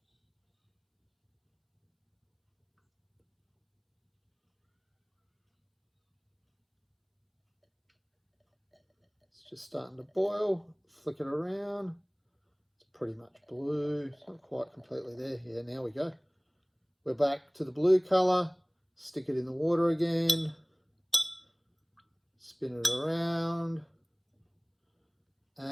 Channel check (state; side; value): identical; both; correlation 1.00